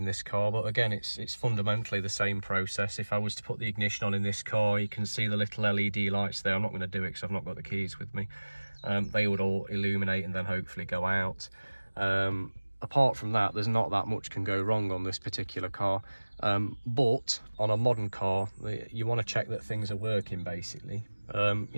this car, but again, it's fundamentally the same process. If I was to put the ignition on in this car, you can see the little LED lights there. I'm not going to do it because I've not got the keys with me. They would all illuminate and then hopefully go out. apart from that, there's not that much can go wrong on this particular car. But on a modern car, you want to check that things are working, basically.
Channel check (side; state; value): both; inverted; correlation -1.00